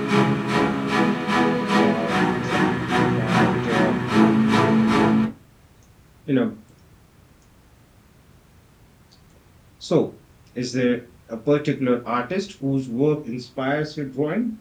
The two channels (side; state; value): both; identical; correlation 1.00